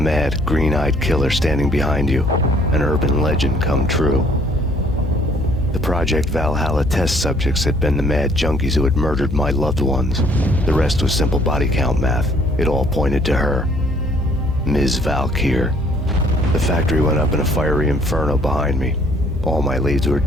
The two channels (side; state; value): both; normal; correlation 0.61